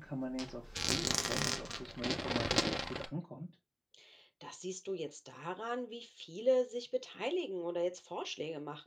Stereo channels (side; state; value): both; identical; correlation 1.00